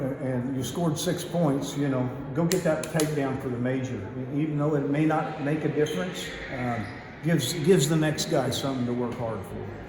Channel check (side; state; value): both; identical; correlation 1.00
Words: and you scored 6 points. You know, go get that takedown for the major. Even though it may not make a difference, gives the next guy something to work hard for.